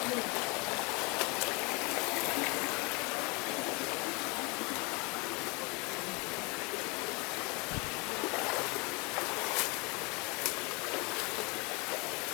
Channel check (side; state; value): right; quieter; 29.1 dB